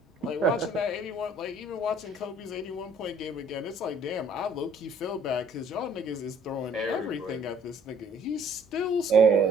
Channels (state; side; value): normal; both; correlation 0.58